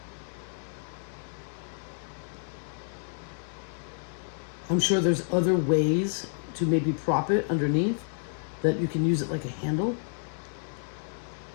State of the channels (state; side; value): silent; right; 58 dB below the other